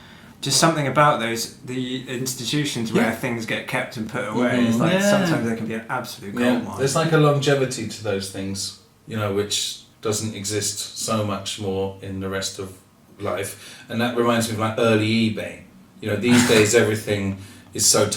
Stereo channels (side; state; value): both; identical; correlation 1.00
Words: just something about the institutions where things get kept and put away. It's like sometimes they can be an absolute gold mine. There's like a longevity to those things, which doesn't exist so much more in the rest of life. And that reminds me of like early eBay. These days everything is so